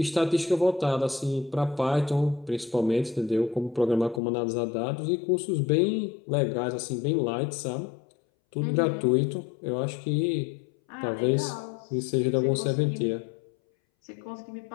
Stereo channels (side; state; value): right; drops out; at 4.2 s